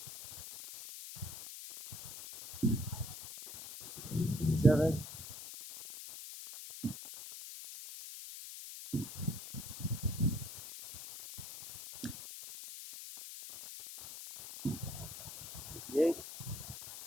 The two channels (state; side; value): noise; left; hiss, 11 dB below the sound